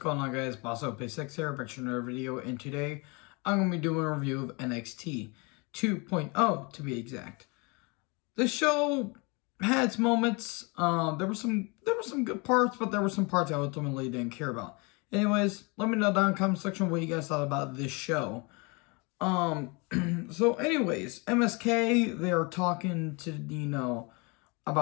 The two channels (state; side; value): quieter; right; 29.5 dB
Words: on, guys? BossOP6 here, back to another video, and today I'm going to be doing a review of NXT 2.0 to be exact. The show had its moments. There were some good parts, but there were some parts I ultimately didn't care about. Anyways, let me know down in the comment section what you guys thought about this show. So anyways, MSK, they are talking to,